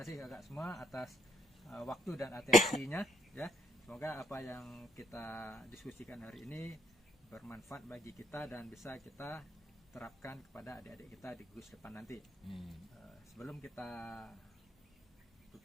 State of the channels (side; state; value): both; normal; correlation 0.71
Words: kakak semua atas waktu dan atensinya ya. Semoga apa yang kita diskusikan hari ini bermanfaat bagi kita dan bisa kita terapkan kepada adik-adik kita di gugus depan nanti. Sebelum kita